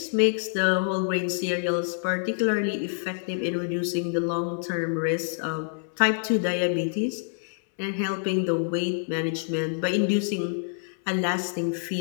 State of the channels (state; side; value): silent; right; 60 dB below the other